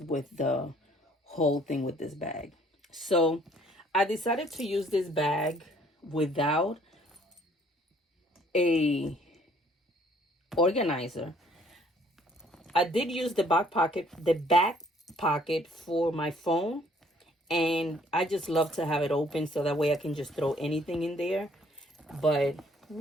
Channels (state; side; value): normal; both; correlation 0.61